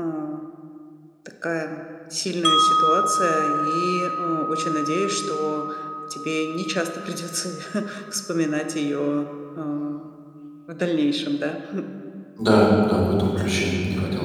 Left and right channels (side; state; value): both; identical; correlation 1.00